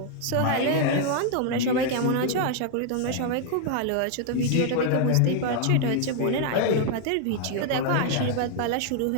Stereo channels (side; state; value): both; different; correlation 0.00